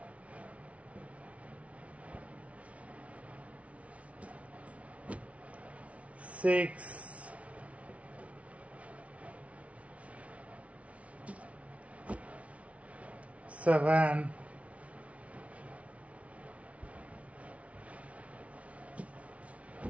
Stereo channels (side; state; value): left; late; 0.064 ms